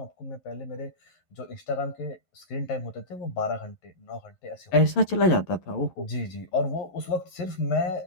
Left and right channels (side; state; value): right; late; 11 ms